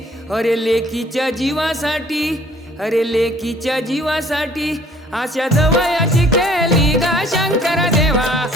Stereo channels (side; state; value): both; normal; correlation 0.57